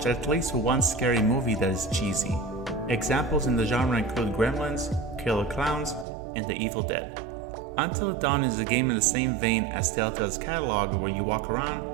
at least one scary movie that is cheesy. Examples in the genre include Gremlins, Killer Clowns, and The Evil Dead. Until Dawn is a game in the same vein as Telltale's catalog, where you walk around,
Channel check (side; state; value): left; drops out; at 6.1 s